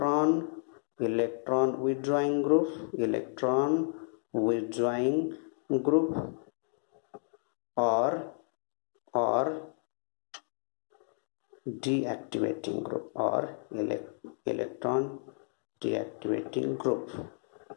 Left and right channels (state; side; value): silent; right; digital silence